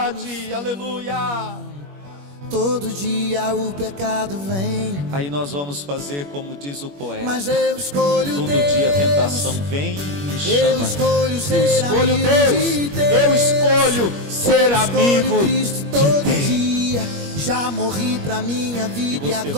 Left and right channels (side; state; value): left; late; 21 ms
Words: aleluia. Todo dia o pecado vem. Aí nós vamos fazer como diz o poeta: mas eu escolho todo Deus. dia a tentação vem e me chama. Eu escolho ser eu escolho amigo Deus. de Deus. Eu escolho ser amigo Cristo de todo Deus. dia. Já morri pra minha vida E e você